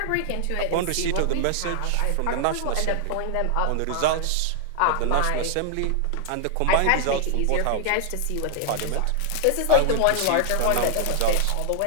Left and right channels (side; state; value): both; different; correlation 0.00